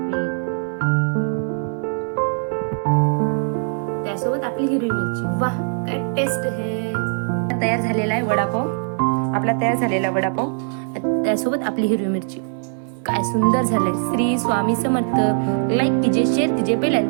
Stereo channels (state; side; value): silent; left; digital silence